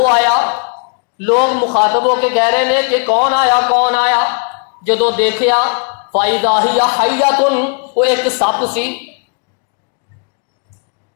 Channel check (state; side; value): quieter; right; 39.4 dB